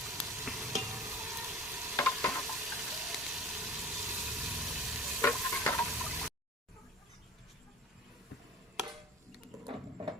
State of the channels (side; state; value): both; normal; correlation 0.41